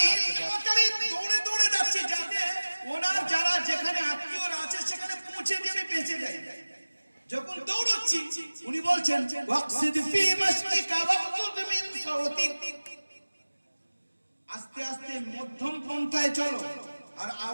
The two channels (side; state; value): both; inverted; correlation -1.00